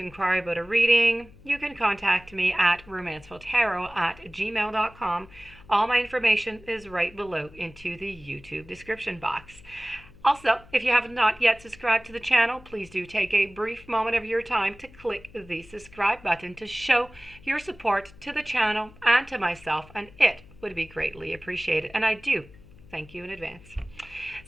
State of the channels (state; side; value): noise; left; hum, 22 dB below the sound